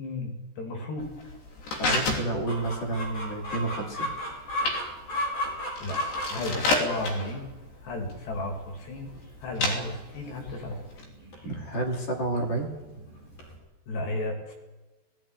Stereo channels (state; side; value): late; right; 14 ms